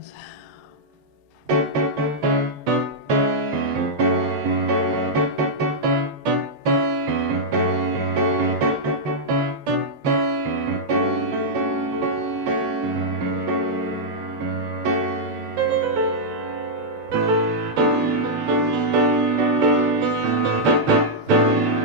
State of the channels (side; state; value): both; normal; correlation -0.07